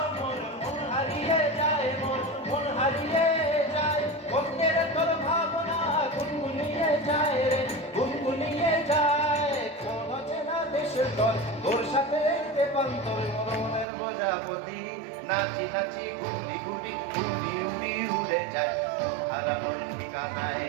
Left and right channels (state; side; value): drops out; left; at 13.9 s